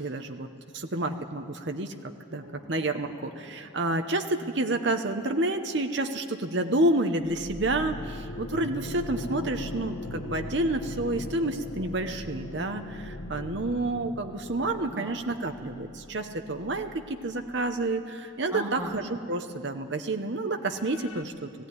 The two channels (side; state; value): both; normal; correlation 0.26